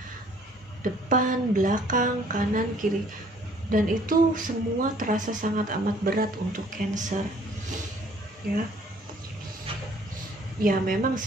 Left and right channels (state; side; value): normal; both; correlation 0.58